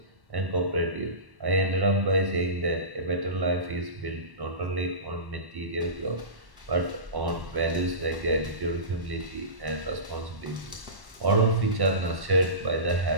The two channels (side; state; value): left; late; 1.1 ms